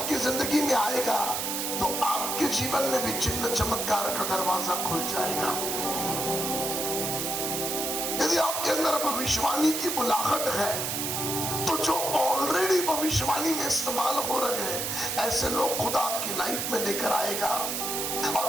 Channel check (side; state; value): right; noise; hiss, 1 dB below the sound